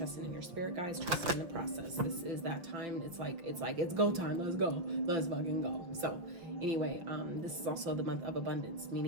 your spirit guides, trusting in the process. This is that time. It's go time. Let's go. Let's fucking go. So anyway, this is also the month of abundance,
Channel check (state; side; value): late; left; 5.6 ms